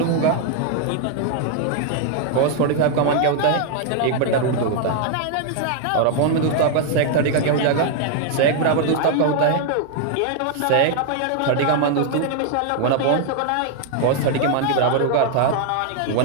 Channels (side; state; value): both; different; correlation 0.00